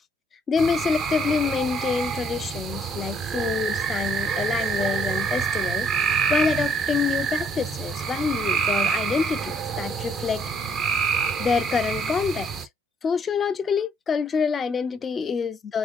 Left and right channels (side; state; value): both; normal; correlation 0.67